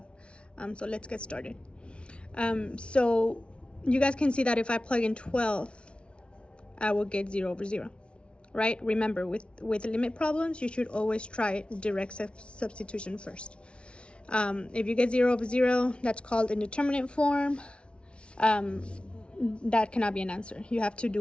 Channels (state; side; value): late; right; 0.058 ms